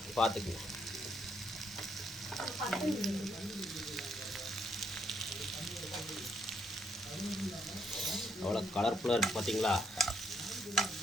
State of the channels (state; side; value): normal; both; correlation 0.73